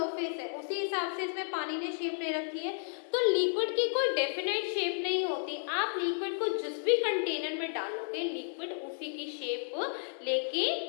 है उसी हिसाब से इसमें पानी ने शेप ले रखी है। तो लिक्विड की कोई डेफिनेट शेप नहीं होती। आप लिक्विड को जिस भी कंटेनर में डालोगे, लिक्विड उसी की शेप लेके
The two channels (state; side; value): silent; right; digital silence